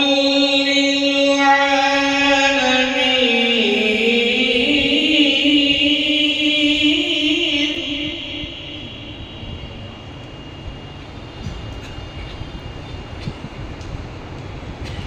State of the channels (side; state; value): both; identical; correlation 1.00